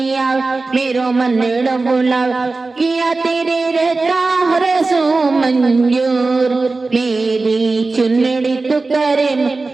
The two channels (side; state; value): left; quieter; 3.6 dB